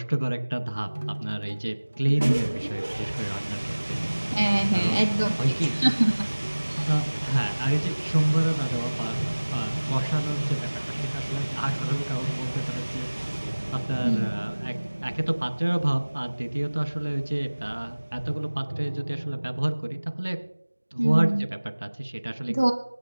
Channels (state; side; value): inverted; both; correlation -1.00